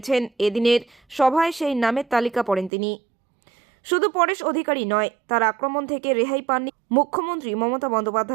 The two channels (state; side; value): drops out; left; at 2.7 s